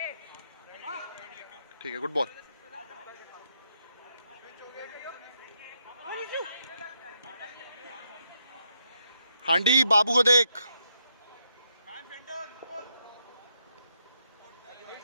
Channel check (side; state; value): both; inverted; correlation -0.79